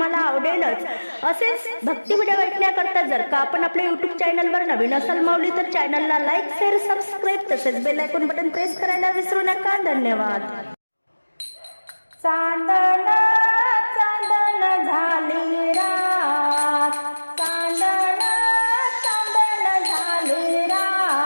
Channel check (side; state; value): both; inverted; correlation -1.00